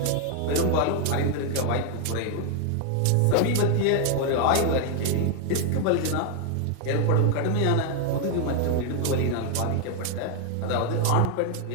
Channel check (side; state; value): both; different; correlation 0.00